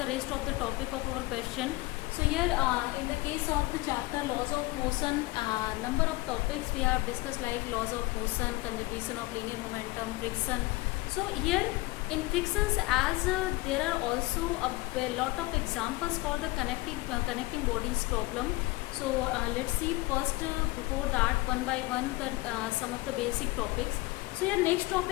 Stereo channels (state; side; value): quieter; right; 21.6 dB